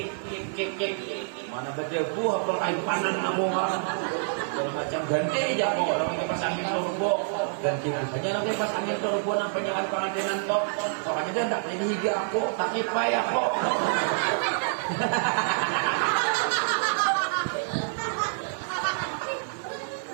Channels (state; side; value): silent; left; digital silence